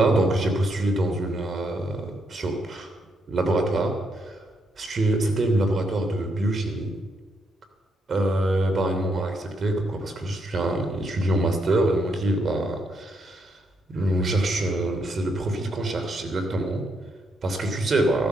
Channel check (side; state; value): both; normal; correlation 0.77